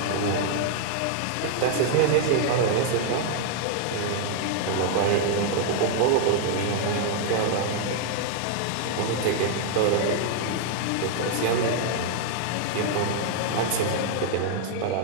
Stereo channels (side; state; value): both; different; correlation 0.00